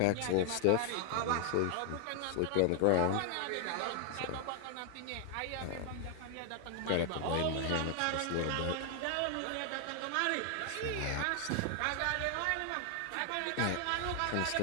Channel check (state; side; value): different; both; correlation 0.00